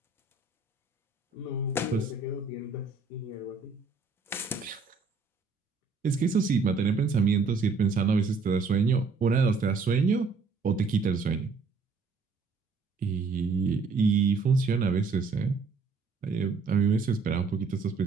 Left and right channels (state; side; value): quieter; left; 4.5 dB